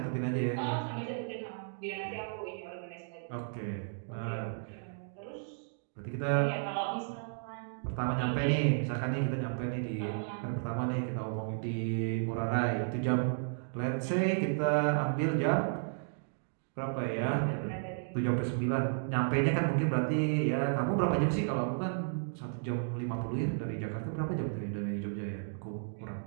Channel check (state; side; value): silent; left; digital silence